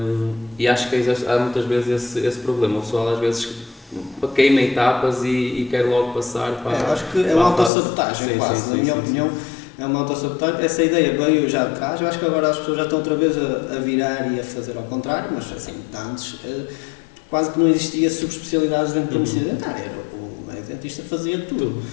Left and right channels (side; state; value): right; drops out; at 7.7 s